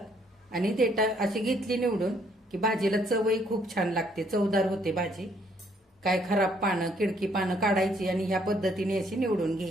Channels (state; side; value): normal; both; correlation 0.67